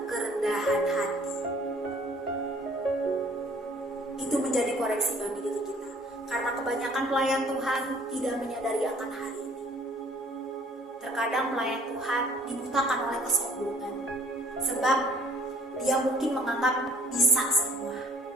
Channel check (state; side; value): normal; both; correlation 0.56